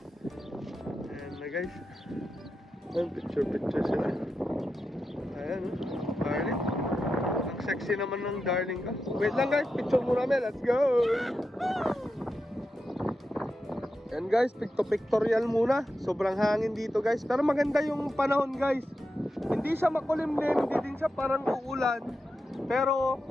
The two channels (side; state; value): both; normal; correlation 0.89